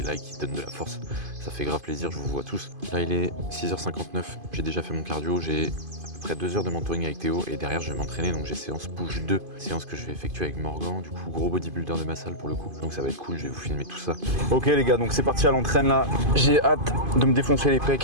like, qui donnent de la force, ça fait grave plaisir, je vous vois tous. Là il est 6h59, j'ai déjà fait mon cardio, j'ai à peu près 2 heures de mentoring avec Théo et derrière je vais m'entraîner, donc j'ai séance push 2, séance que je vais effectuer avec Morgan, du coup gros bodybuilder de ma salle pour le coup, donc ça va être cool, je vais vous filmer tout ça. Ok les gars, donc c'est parti à l'entraîne là, j'ai hâte de me défoncer les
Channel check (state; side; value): late; left; 2.5 ms